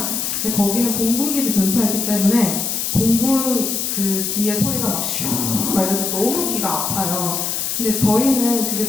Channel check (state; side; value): noise; left; hiss, 1 dB below the sound